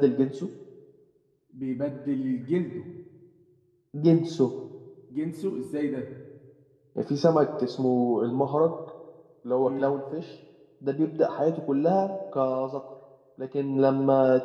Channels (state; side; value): identical; both; correlation 1.00